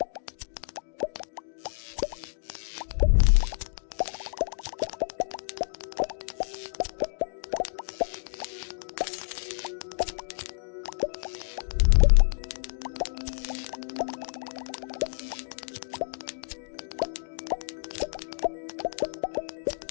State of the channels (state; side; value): silent; right; digital silence